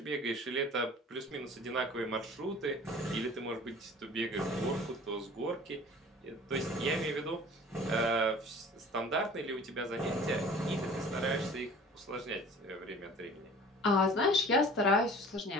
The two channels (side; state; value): both; normal; correlation 0.45